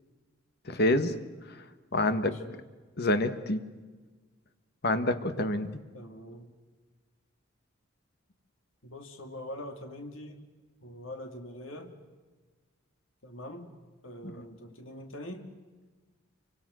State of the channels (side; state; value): both; normal; correlation 0.14